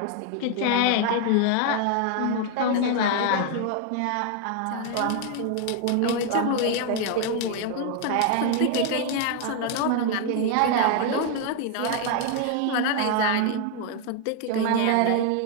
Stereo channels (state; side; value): different; both; correlation 0.00